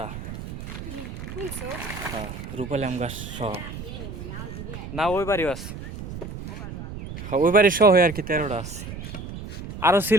হ্যাঁ রূপালি আম গাছ সহ না, ওই বাড়িও আছে, ওই বাড়ি সহ আর কি 13টা আছে। আরো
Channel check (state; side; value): noise; right; rumble, 9 dB below the sound